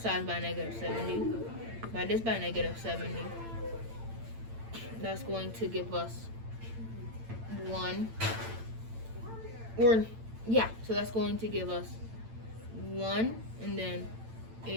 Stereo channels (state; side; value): late; left; 8.9 ms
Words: by negative 70. Divide this by negative 70. That's going to give us 1. So that's going to give us 1 and then